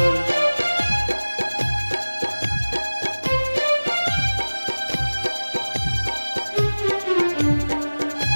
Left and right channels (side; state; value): both; inverted; correlation -1.00